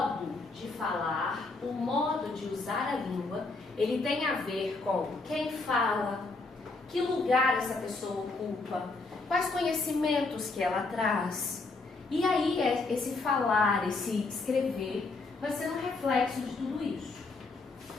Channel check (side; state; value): right; quieter; 3.6 dB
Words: de falar, o modo de usar a língua, ele tem a ver com quem fala, que lugar essa pessoa ocupa, quais conhecimentos que ela traz. E aí esse falar, esse escrever, vai ser um reflexo de tudo isso.